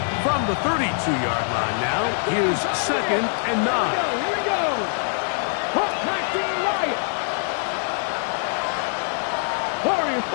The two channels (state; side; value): silent; right; 61 dB below the other